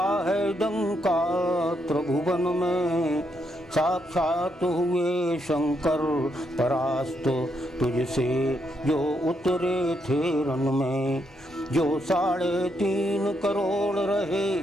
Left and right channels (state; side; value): normal; both; correlation 0.78